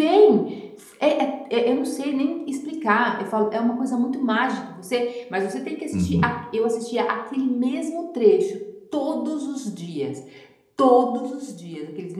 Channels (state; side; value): identical; both; correlation 1.00